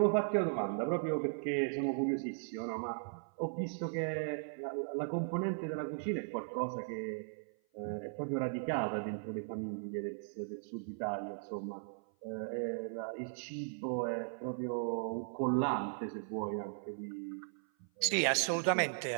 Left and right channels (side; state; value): left; silent; 53 dB below the other